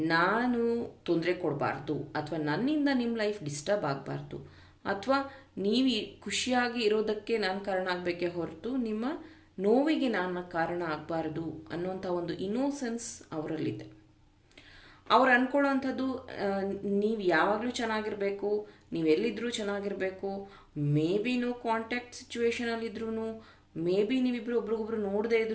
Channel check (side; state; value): both; identical; correlation 1.00